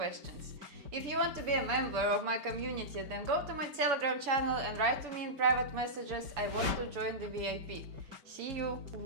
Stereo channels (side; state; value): left; late; 5.1 ms